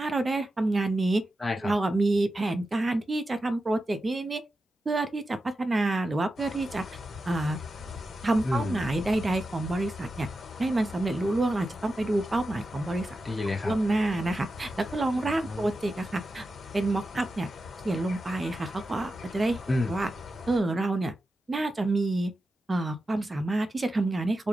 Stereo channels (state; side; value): normal; both; correlation 0.91